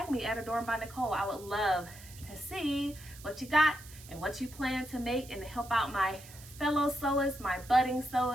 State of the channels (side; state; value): right; noise; hiss, 18 dB below the sound